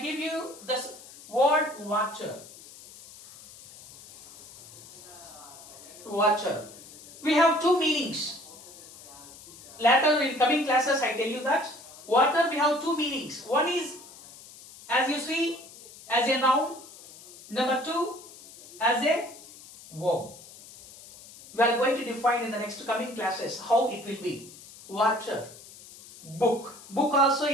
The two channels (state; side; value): noise; left; hiss, 19 dB below the sound